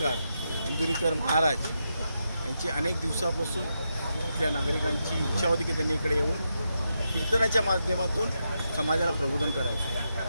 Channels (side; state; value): both; inverted; correlation -0.85